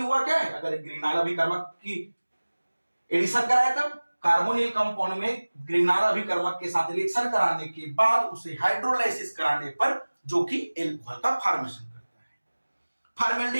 क्या है, अगर ग्रिग्नार्ड अभिकर्मक की एडिशन कराया तब कार्बोनिल कंपाउंड में ग्रिग्नार्ड अभिकर्मक के साथ रिएक्शन कराने के बाद उसे हाइड्रोलाइसिस कराने पर जो कि एल्कोहल का फॉर्मेशन करता है।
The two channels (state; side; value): inverted; both; correlation -1.00